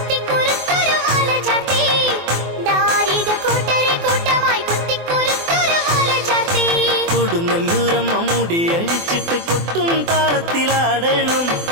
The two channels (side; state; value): left; late; 24 ms